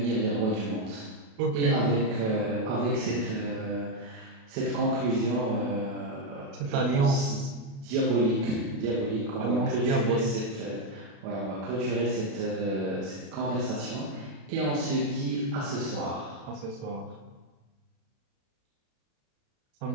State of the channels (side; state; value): left; late; 36 ms